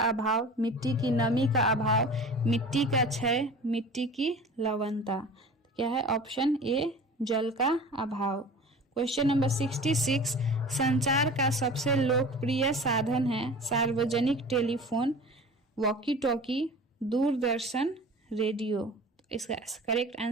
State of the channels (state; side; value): normal; both; correlation 0.39